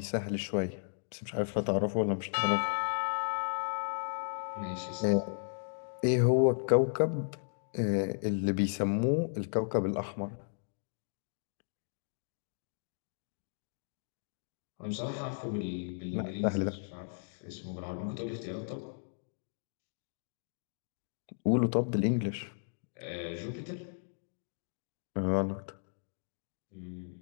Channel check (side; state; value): right; silent; digital silence